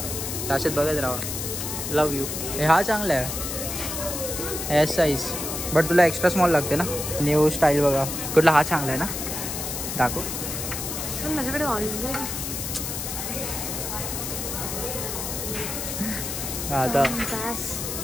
त्याच्यात बघत राहा. लव यू. हा चांगला आहे एस साईज बट तुला एक्स्ट्रा स्मॉल लागते ना. न्यू स्टाईल बघा. कुठला हा चांगला आहे ना. दाखव. माझ्याकडे आता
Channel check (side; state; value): left; noise; hiss, 4 dB below the sound